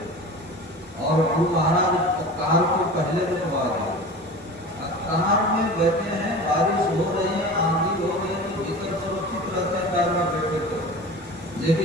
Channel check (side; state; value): both; normal; correlation 0.35